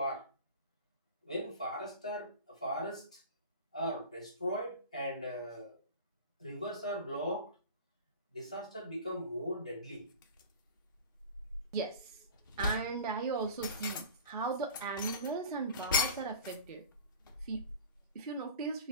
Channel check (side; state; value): both; inverted; correlation -0.36